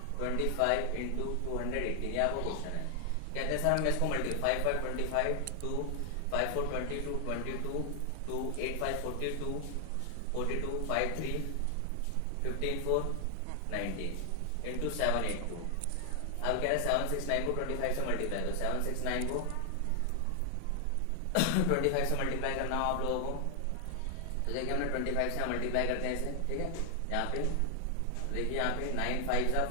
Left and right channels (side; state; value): both; different; correlation 0.00